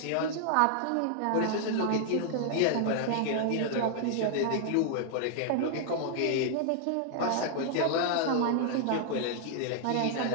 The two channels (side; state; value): both; different; correlation -0.01